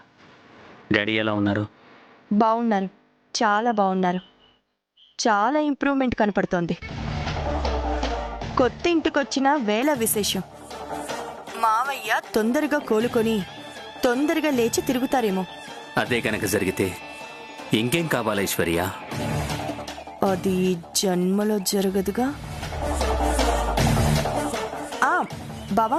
డాడీ ఎలా ఉన్నారు? బాగున్నారు, చాలా బాగున్నారు. చాలా ఇంప్రూవ్మెంట్ కనపడుతోంది. కొత్త ఇంటికొచ్చిన వేళ విశేషం. మావయ్య తొందరగా కోలుకొని తొందరగా లేచి తిరుగుతారేమో. అదే కనుక జరిగితే ఇంకేం కావాలి ఐశ్వర్య? అది జన్మలో జరగదుగా.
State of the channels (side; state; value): both; identical; correlation 1.00